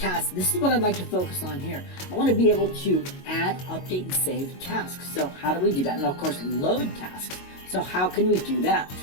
this is what I'd like to focus on here. I want to be able to add, update, and save tasks. So how do we do that? And of course, load tasks. So how can we do that?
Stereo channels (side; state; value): right; late; 22 ms